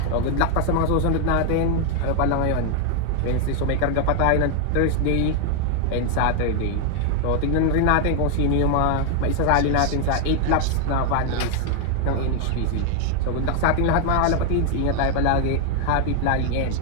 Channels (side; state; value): both; different; correlation 0.01